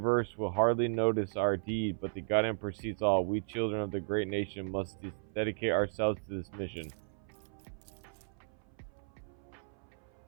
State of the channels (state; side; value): silent; left; 54 dB below the other